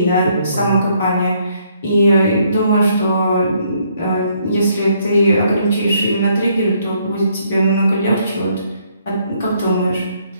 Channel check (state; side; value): inverted; both; correlation -0.68